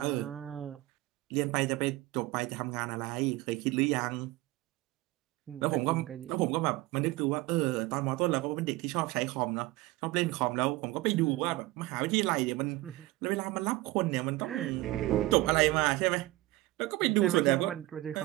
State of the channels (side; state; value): left; quieter; 19.2 dB